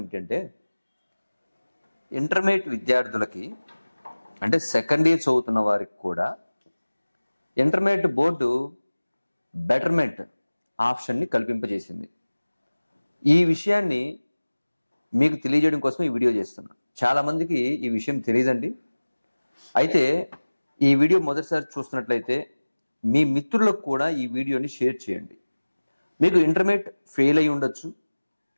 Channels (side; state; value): both; inverted; correlation -1.00